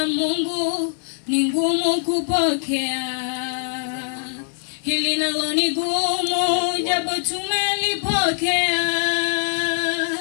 Mungu ni ngumu kupokea, hili nalo ni gumu japo tumelipokea,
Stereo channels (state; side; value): silent; right; digital silence